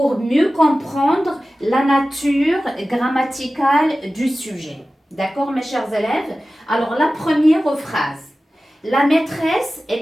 mieux comprendre la nature grammaticale du sujet. D'accord, mes chers élèves? Alors, la première phrase. La maîtresse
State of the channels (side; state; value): both; normal; correlation 0.95